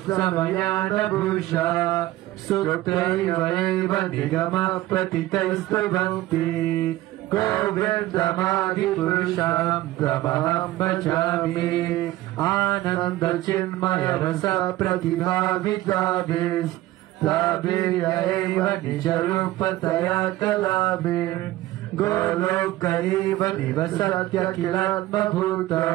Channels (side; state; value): left; quieter; 16.3 dB